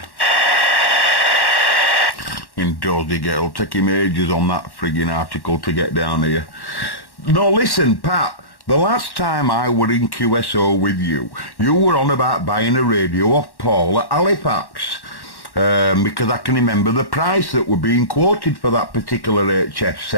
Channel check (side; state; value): right; late; 1.1 ms